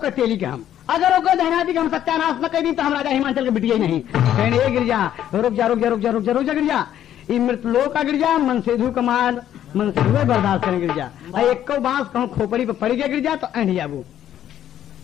तेली के हम अगर वो दहना दी हम सत्यानाश न कर दी तो हम राजा हिमाचल के बिटिया ही नहीं कहने ए गिरजा रुक जा रुक जा रुक जा रुक जा रुक जा गिरजा ये मृत लोग का गिरजा मन सेधु कमाल मन से बर्दाश्त करें गिरजा एक बांस कहूँ खोपड़ी पे पड़ गया गिरजा तो एंड जाबू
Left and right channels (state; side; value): quieter; right; 11.1 dB